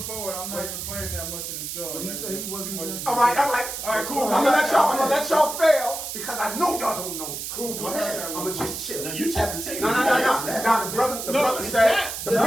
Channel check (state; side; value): noise; right; hiss, 6 dB below the sound